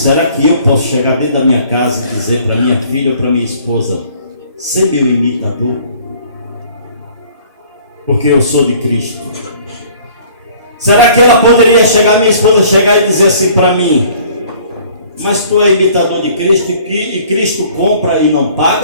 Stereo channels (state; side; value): inverted; both; correlation -0.54